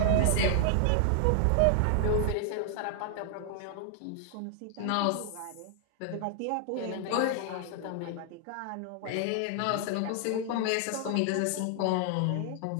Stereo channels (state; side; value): different; both; correlation 0.00